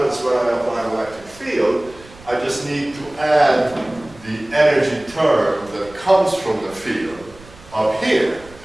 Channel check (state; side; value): noise; right; rumble, 22 dB below the sound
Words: when I apply an electric field, I just need to add the energy term that comes from the field up here,